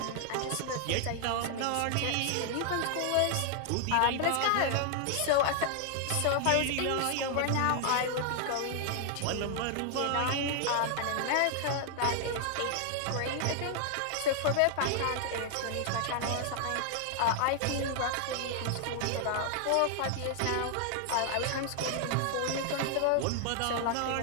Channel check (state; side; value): different; both; correlation 0.00